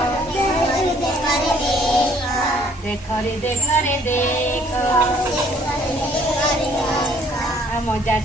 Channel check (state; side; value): normal; both; correlation 0.61